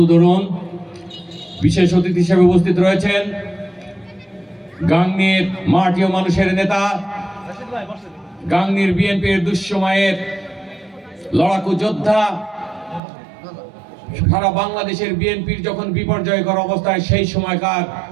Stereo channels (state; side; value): drops out; left; at 13.0 s